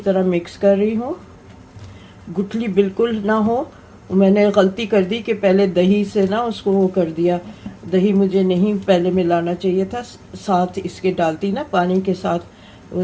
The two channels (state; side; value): identical; both; correlation 1.00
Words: मिक्स कर रही हूँ, गुठली बिल्कुल ना हो। मैंने गलती कर दी कि पहले दही से ना उसको वो कर दिया, दही मुझे नहीं पहले मिलाना चाहिए था, साथ इसके डालती ना पानी के साथ, वो